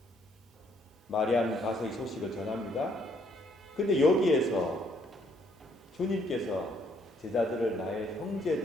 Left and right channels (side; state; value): both; normal; correlation 0.68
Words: 마리아는 가서 이 소식을 전합니다. 근데 여기에서 주님께서 제자들을 나의